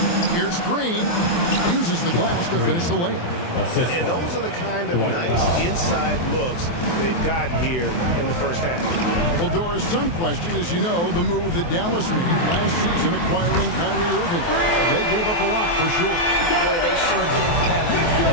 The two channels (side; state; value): right; late; 23 ms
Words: Here's Green. Uses the glass to finish the layup. And those are the kind of nice inside looks they've gotten here in the first half. Well, Doris, some question is, you know, the move that Dallas made last season acquiring Kyrie Irving. They gave up a lot for sure. Boy, they sure did, Kevin. And